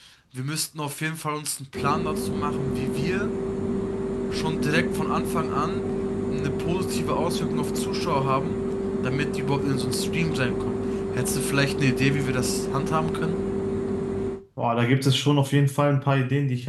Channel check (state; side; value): identical; both; correlation 1.00